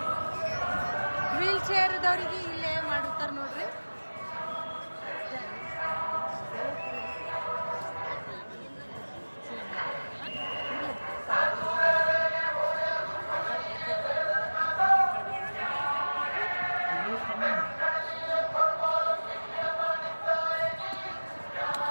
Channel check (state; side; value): inverted; both; correlation -1.00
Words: ವೀಲ್ ಚೇರ್ ಇದ್ದವ್ರಿಗೆ ಇಲ್ಲೇ ಮಾಡಿರ್ತಾರ ನೋಡ್ರಿ